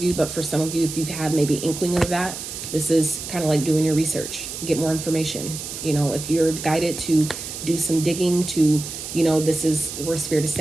you, but for some of you, if you've had maybe inkling of that, this is kind of like doing your research, get more information. You know, if you're guided to do some digging, to, you know, this is where Spirit is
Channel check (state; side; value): noise; right; hiss, 8 dB below the sound